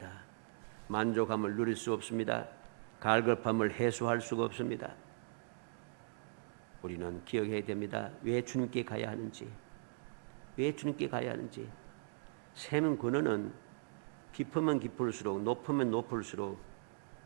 만족함을 누릴 수 없습니다. 갈급함을 해소할 수가 없습니다. 우리는 기억해야 됩니다. 왜 주님께 가야 하는지, 왜 주님께 가야 하는지. 샘 근원은 깊으면 깊을수록, 높으면 높을수록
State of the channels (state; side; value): silent; left; digital silence